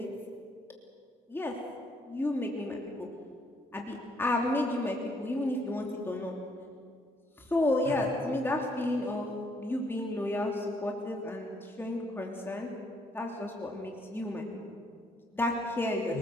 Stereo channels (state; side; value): normal; both; correlation 0.69